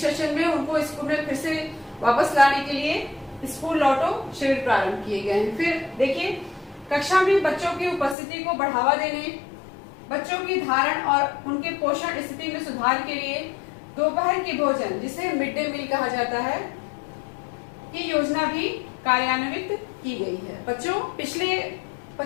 सेशन में, उनको स्कूल में फिर से वापस लाने के लिए स्कूल लौटो शिविर प्रारंभ किए गए हैं। फिर देखिए, कक्षा में बच्चों की उपस्थिति को बढ़ावा देने, बच्चों की धारण और उनके पोषण स्थिति में सुधार के लिए दोपहर के भोजन, जिसे मिड डे मील कहा जाता है, की योजना भी कार्यान्वित की गई है। बच्चों, पिछले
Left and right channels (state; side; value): drops out; right; at 8.2 s